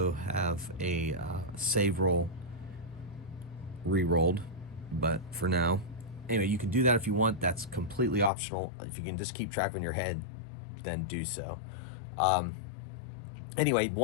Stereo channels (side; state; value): right; drops out; at 8.3 s